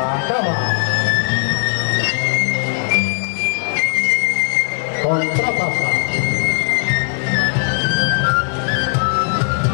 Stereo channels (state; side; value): silent; right; digital silence